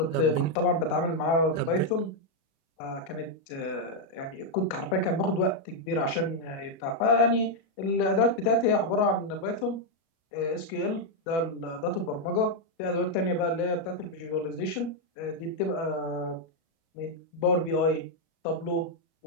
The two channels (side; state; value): right; late; 36 ms